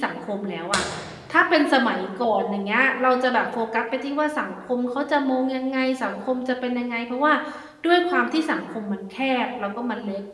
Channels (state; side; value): identical; both; correlation 1.00